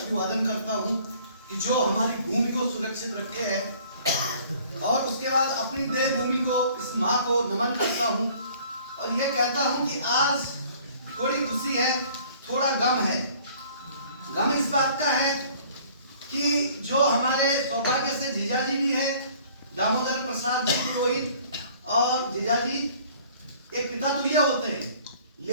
करता हूं कि जो हमारी भूमि को सुरक्षित रखे है। और उसके बाद अपनी देव भूमि को, इस माँ को नमन करता हूं और ये कहता हूं कि आज थोड़ी खुशी है, थोड़ा गम है। गम इस बात का है कि जो हमारे सौभाग्य से जीजाजी भी है, दामोदर प्रसाद जी की वही, और जीजाजी एक पिता तुल्य होते हैं,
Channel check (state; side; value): inverted; both; correlation -0.54